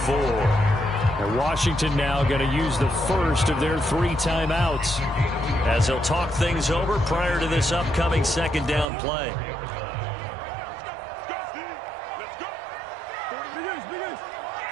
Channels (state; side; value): drops out; left; at 8.8 s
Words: And Washington now going to use the first of their 3 timeouts as they'll talk things over prior to this upcoming second down play.